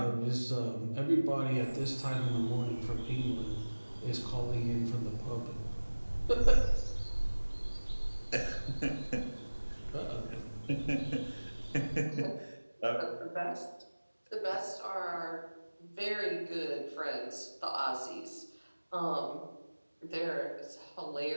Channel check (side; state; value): both; inverted; correlation -1.00